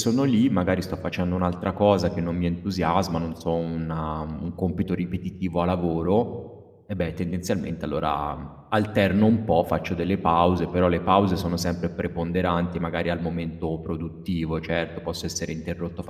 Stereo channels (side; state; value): both; identical; correlation 1.00